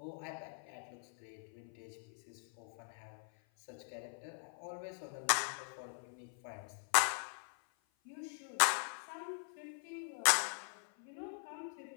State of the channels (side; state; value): right; silent; 50 dB below the other